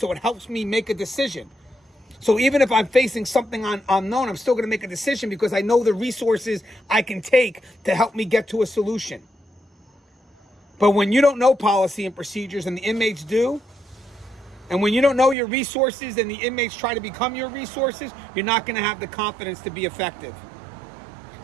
it helps me make a decision. So even if I'm facing something unknown, I'm still going to make a decision because I know the resources I can take to help me get to a solution. But when you don't know policy and procedures and the inmates do, and when you don't know your resources and the inmates try to become your resources, you're not going to have the confidence to be effective.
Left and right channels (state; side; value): drops out; left; at 15.4 s